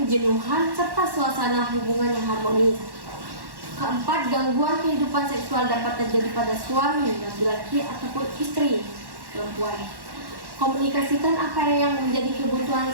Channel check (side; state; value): left; late; 1.1 ms